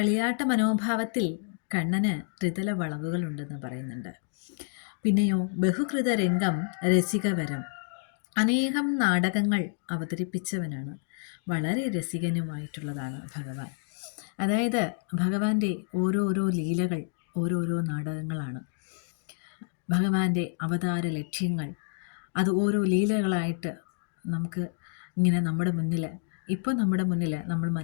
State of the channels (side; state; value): right; silent; digital silence